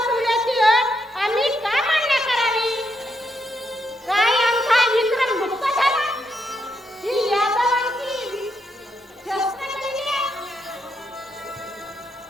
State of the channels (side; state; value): both; normal; correlation 0.80